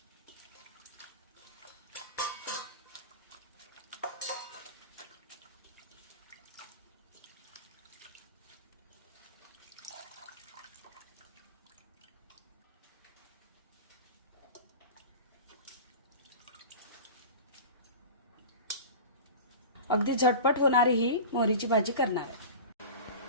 अगदी झटपट होणारी ही मोहरीची भाजी करणार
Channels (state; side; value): inverted; both; correlation -0.33